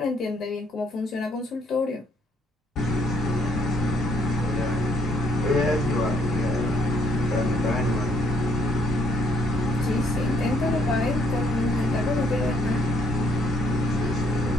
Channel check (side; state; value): both; normal; correlation 0.67